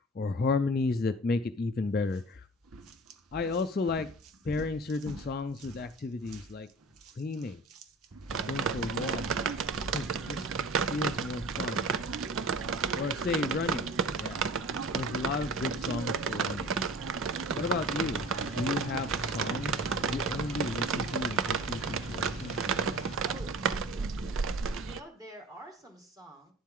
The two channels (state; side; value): normal; both; correlation 0.41